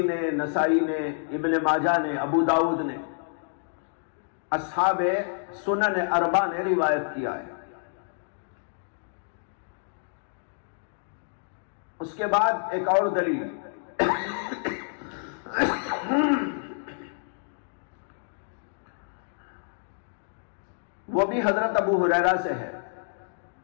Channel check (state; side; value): silent; right; digital silence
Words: نے, نسائی نے, ابن ماجہ نے, ابو داؤد نے, اصحاب سنن اربعہ نے روایت کیا ہے. اس کے بعد ایک اور دلیل وہ بھی حضرت ابو ہریرہ سے ہے.